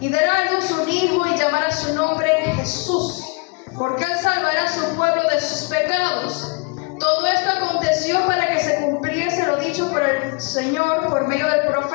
dará a luz un hijo y llamará su nombre Jesús, porque él salvará a su pueblo de sus pecados. Todo esto aconteció para que se cumpliese lo dicho por el Señor por medio del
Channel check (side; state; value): right; quieter; 30.7 dB